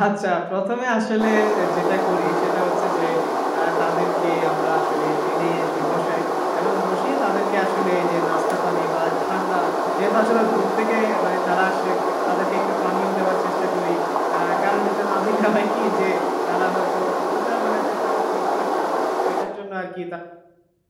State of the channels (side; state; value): both; identical; correlation 1.00